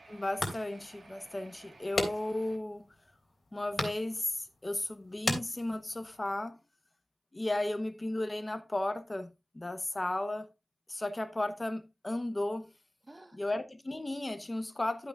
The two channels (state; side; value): normal; both; correlation 0.98